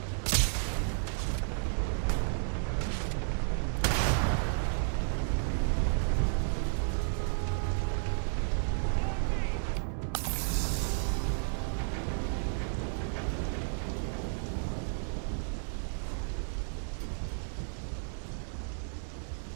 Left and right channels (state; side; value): silent; left; 56 dB below the other